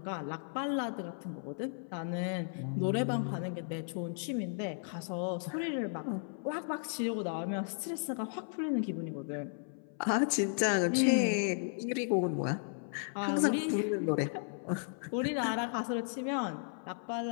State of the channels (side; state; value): right; silent; 55 dB below the other